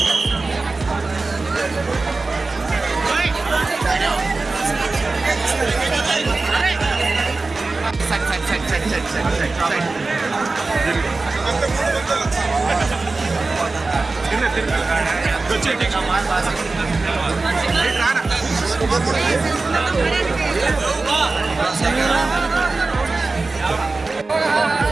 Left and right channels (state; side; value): quieter; left; 3.6 dB